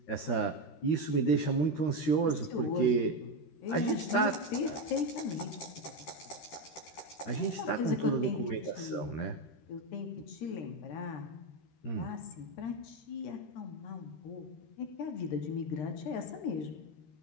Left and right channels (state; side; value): late; right; 13 ms